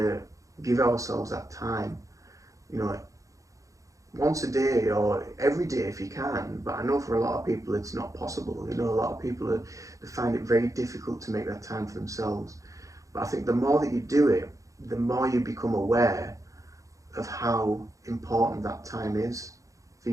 give ourselves that time, you know, once a day or every day if you can. But I know for a lot of people it's not possible. You know, a lot of people they find it very difficult to make that time for themselves. But I think the more that you do it, the more you become aware of how important that time is for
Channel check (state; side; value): late; left; 0.16 ms